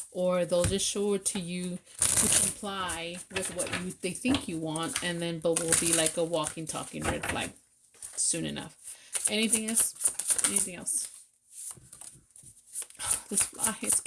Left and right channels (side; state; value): both; identical; correlation 1.00